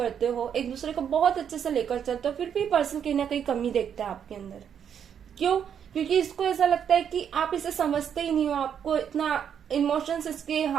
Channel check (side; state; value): left; quieter; 8.3 dB